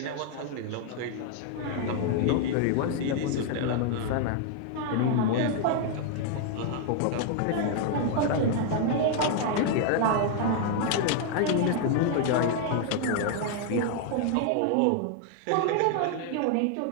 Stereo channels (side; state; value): both; different; correlation 0.00